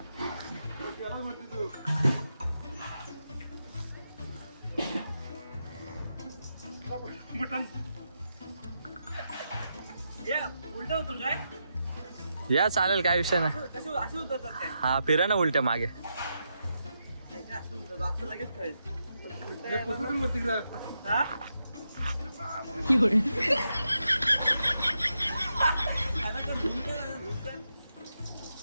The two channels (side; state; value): both; inverted; correlation -0.85